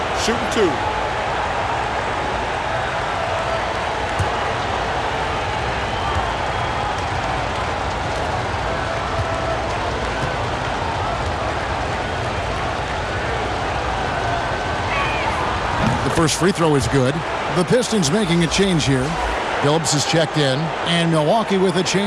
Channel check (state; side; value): identical; both; correlation 1.00